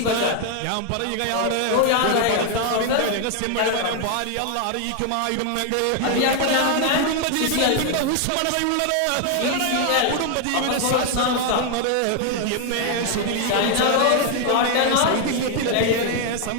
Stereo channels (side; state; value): both; different; correlation 0.00